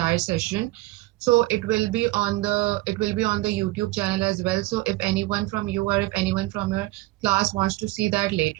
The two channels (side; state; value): left; quieter; 19.4 dB